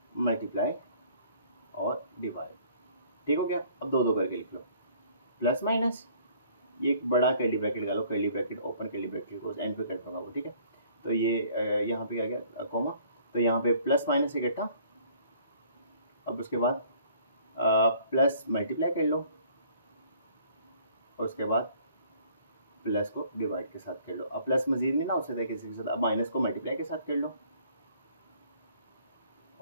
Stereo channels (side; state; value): both; inverted; correlation -0.58